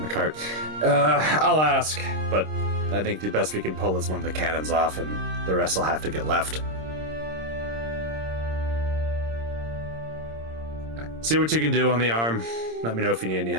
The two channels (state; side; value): late; left; 26 ms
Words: the cart. I'll ask, but I think the best we can pull is one of the cannons off, and the rest will have to get left. See what you can do on the arm. Let me know if you need any